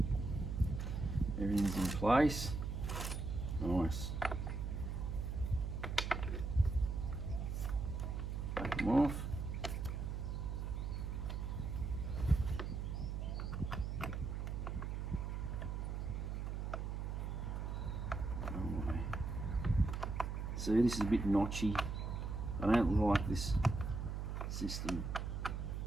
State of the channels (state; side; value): noise; right; hum, 3 dB below the sound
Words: Everything's in place. Nice. Take them off. See, this is a bit notchy. I don't like this system